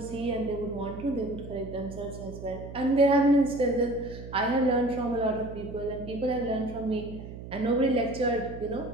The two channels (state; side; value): noise; right; hum, 12 dB below the sound